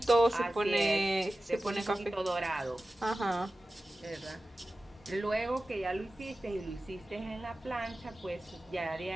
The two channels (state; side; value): normal; both; correlation 0.95